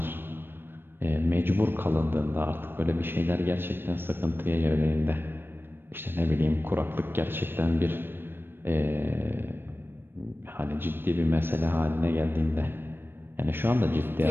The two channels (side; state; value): left; late; 0.099 ms